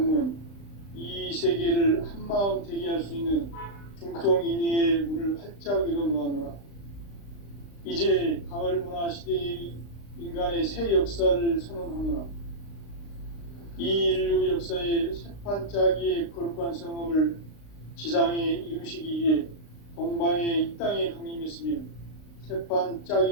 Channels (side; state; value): right; late; 35 ms